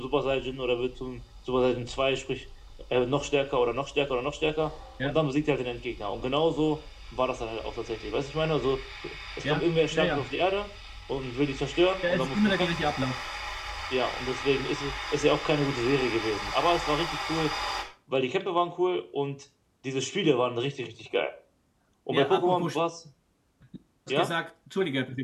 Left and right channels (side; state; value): both; identical; correlation 1.00